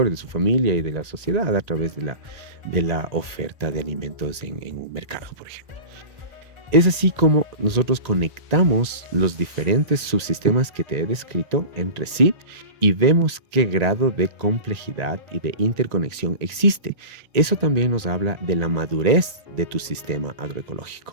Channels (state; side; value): late; left; 1.8 ms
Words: de su familia y de la sociedad a través de la oferta de alimentos en un mercado, por ejemplo. Es así como nosotros conectamos los diferentes subsistemas que te he descrito entre sí y vemos qué grado de complejidad y de interconexión existe. Eso también nos habla de la madurez de tu sistema